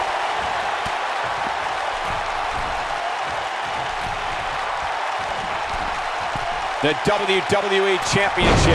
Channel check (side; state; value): both; identical; correlation 1.00